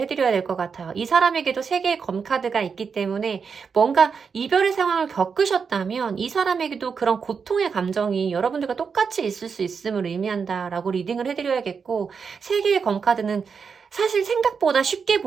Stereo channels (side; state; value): left; quieter; 5.9 dB